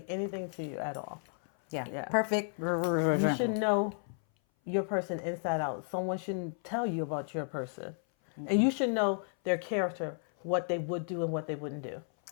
anything to you at all. Yeah. Yeah. Perfect. You should know your person inside out. Someone shouldn't tell you about your person. Mm-hmm. And you should know their character, what they would do and what they wouldn't do.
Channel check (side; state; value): right; silent; 56 dB below the other